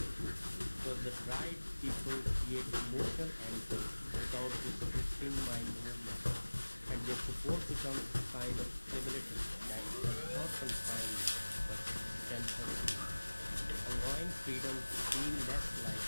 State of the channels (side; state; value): both; inverted; correlation -1.00